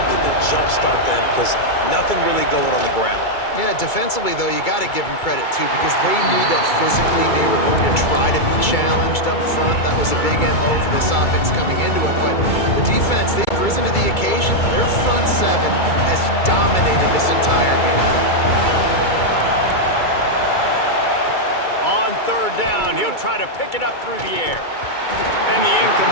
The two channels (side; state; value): right; late; 2.3 ms